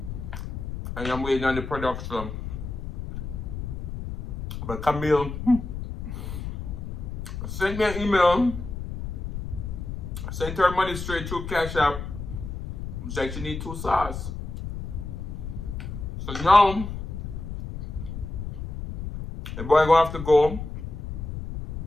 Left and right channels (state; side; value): noise; left; rumble, 7 dB below the sound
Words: And I'm waiting on the production But Camille sent me an email, sent her money straight through Cash App. She actually need 2 sauce. So now, the boy gonna have to go